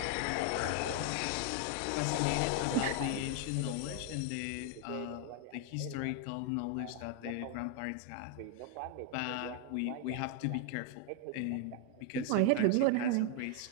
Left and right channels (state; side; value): different; both; correlation 0.00